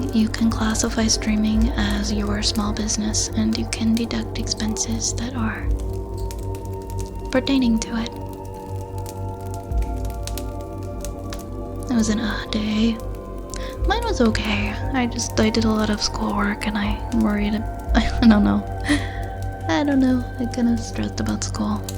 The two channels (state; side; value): identical; both; correlation 1.00